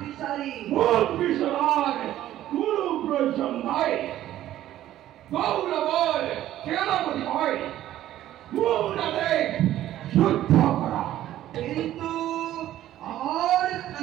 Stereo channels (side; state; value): left; quieter; 13.1 dB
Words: মুখ বিচার কোনো প্রয়োজন নাই গৌরবর সেনাপতি হয় মুখ যুদ্ধ করা কিন্তু আমার